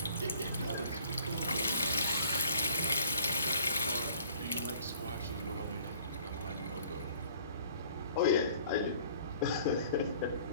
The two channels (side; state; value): both; inverted; correlation -0.54